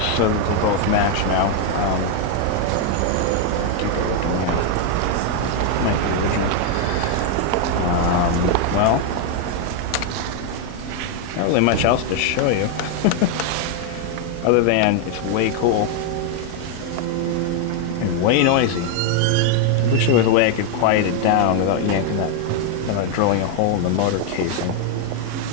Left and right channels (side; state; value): both; different; correlation 0.00